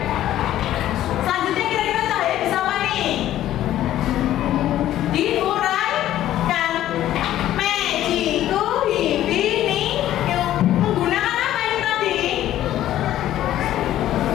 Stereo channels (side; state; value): right; quieter; 12.9 dB